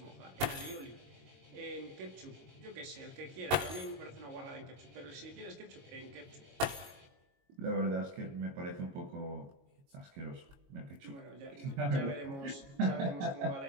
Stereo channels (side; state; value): left; late; 22 ms